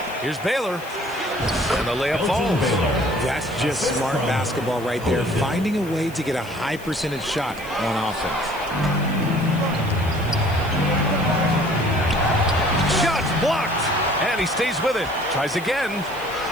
Here's Baylor. And the layup falls. That's just smart basketball right there. Finding a way to get a high percentage shot on offense. Blocked, and he stays with it. Tries again.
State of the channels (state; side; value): noise; left; hiss, 20 dB below the sound